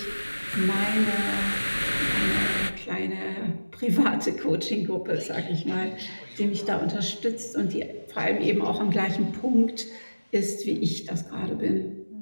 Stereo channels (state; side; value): inverted; both; correlation -1.00